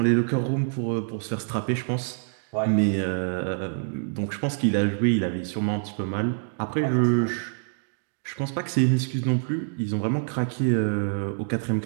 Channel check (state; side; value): silent; left; digital silence